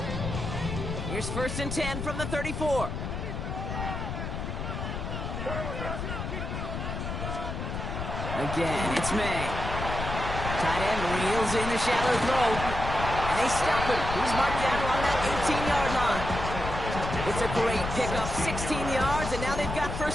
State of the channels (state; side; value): noise; left; rumble, 5 dB below the sound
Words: Here's 1st and 10 from the 34. Again, it's May. Tight end reels in the shallow throw. And they stop him. He's marked down along that 18-yard line. It's a great pickup, 16 yards, and now they've got